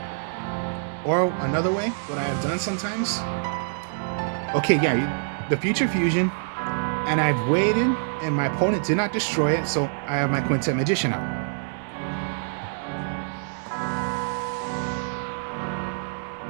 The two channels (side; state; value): left; silent; digital silence